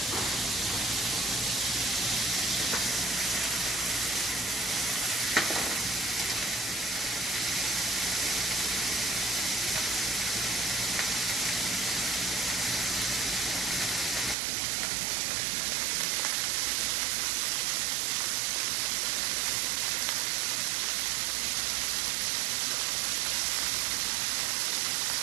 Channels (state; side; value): drops out; left; at 14.4 s